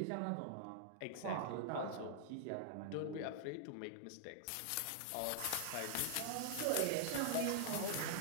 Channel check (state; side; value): different; both; correlation -0.01